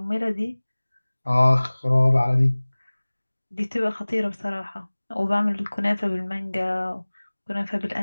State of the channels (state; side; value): inverted; both; correlation -1.00